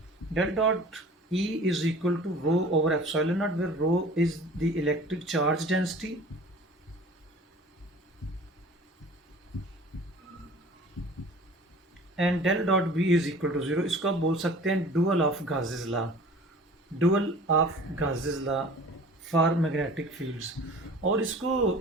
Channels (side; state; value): both; normal; correlation 0.44